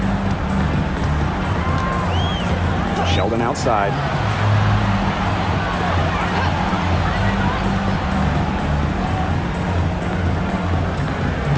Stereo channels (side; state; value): both; identical; correlation 1.00